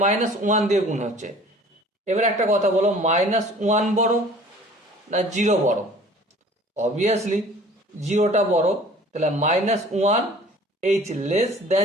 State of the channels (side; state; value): both; normal; correlation 0.48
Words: -1 দিয়ে গুণ হচ্ছে। এবার একটা কথা বলো, -1 বড় না 0 বড়? অবভিয়াসলি 0টা বড়। তাহলে -1 h